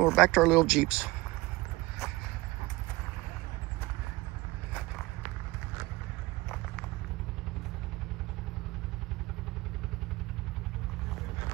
back to our little Jeeps.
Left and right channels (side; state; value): left; quieter; 21.0 dB